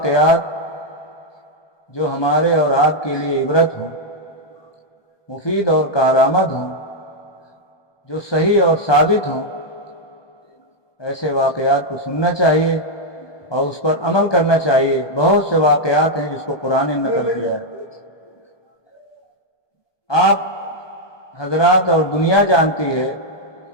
جو ہمارے اور آپ کے لیے عبرت ہوں، مفید اور کارآمد ہوں، جو صحیح اور ثابت ہوں، ایسے واقعات کو سننا چاہیے اور اس پر عمل کرنا چاہیے۔ بہت سے واقعات ہیں جس کو قرآن نے نقل کیا ہے۔ آپ حضرات اور دنیا جانتی ہے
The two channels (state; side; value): late; right; 1.2 ms